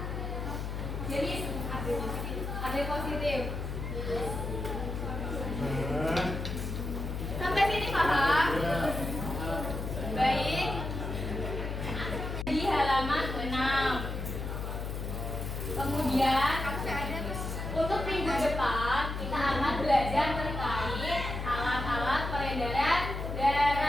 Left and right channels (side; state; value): left; noise; hum, 4 dB below the sound